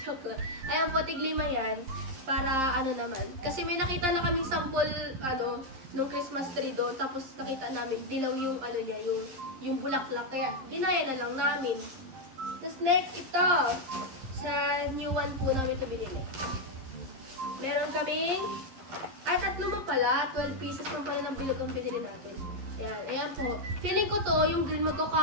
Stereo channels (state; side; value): late; left; 11 ms